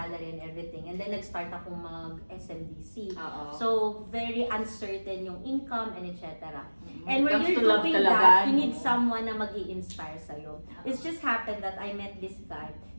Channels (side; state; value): both; inverted; correlation -1.00